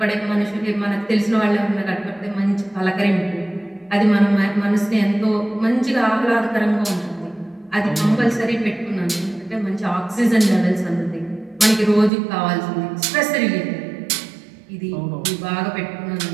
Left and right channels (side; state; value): left; drops out; at 12.1 s